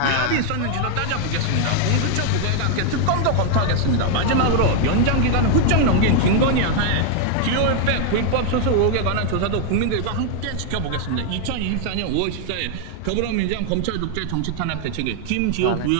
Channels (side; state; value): both; different; correlation 0.00